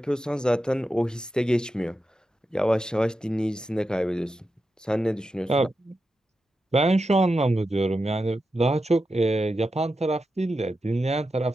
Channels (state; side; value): normal; both; correlation 0.89